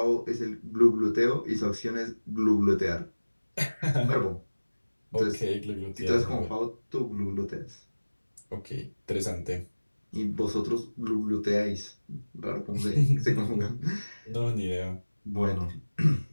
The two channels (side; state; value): both; inverted; correlation -1.00